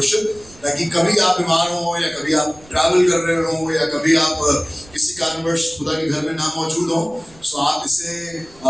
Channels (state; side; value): noise; right; rumble, 25 dB below the sound